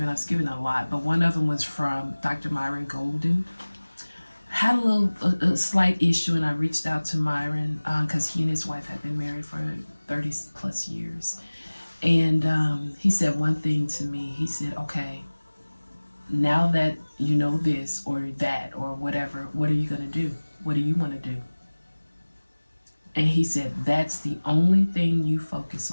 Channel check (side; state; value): both; inverted; correlation -1.00